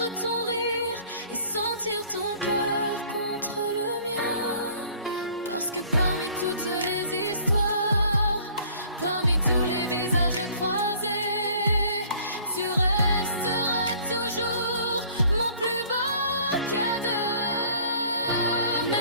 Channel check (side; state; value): both; inverted; correlation -0.54